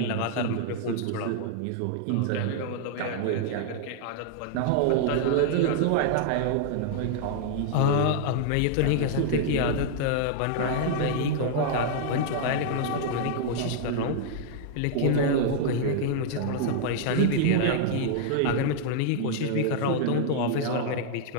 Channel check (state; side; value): different; both; correlation -0.01